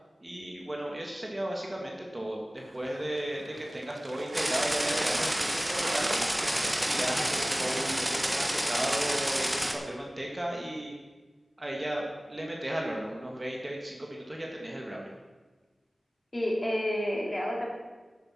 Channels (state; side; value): normal; both; correlation 0.98